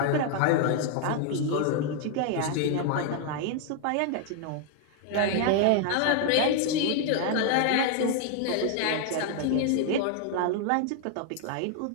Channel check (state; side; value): different; both; correlation 0.00